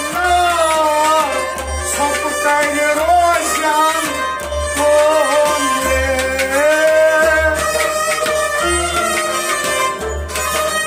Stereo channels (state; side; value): identical; both; correlation 1.00